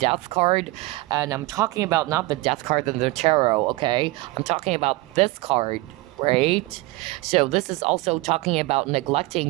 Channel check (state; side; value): quieter; left; 20.9 dB